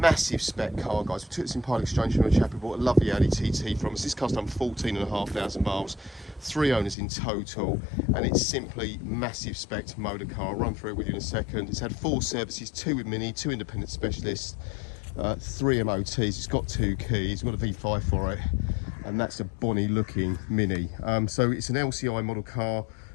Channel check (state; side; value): drops out; right; at 7.0 s